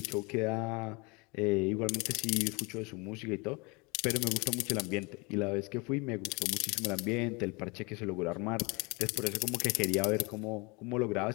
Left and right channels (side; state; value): right; quieter; 28.2 dB